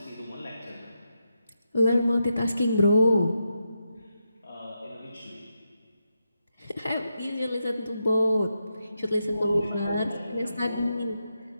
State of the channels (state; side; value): inverted; both; correlation -0.85